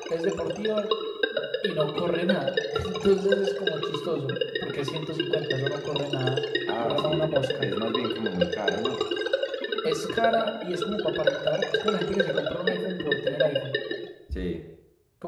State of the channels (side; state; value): both; identical; correlation 1.00